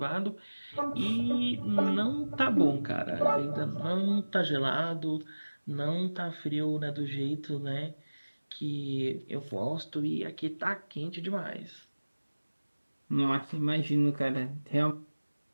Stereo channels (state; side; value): inverted; both; correlation -1.00